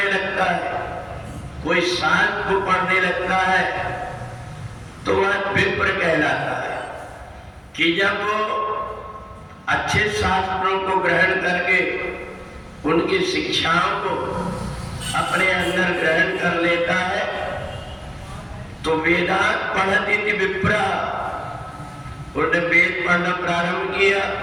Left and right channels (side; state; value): both; identical; correlation 1.00